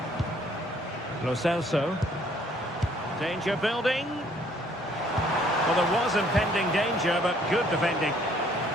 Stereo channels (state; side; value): normal; both; correlation 0.62